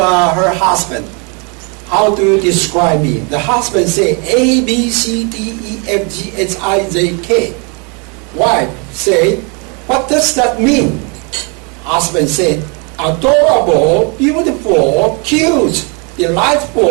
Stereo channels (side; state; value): left; quieter; 33.9 dB